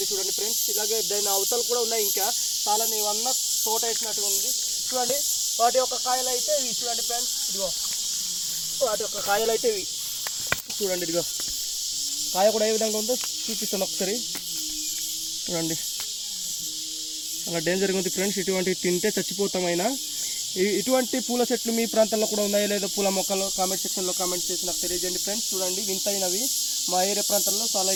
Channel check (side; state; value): both; identical; correlation 1.00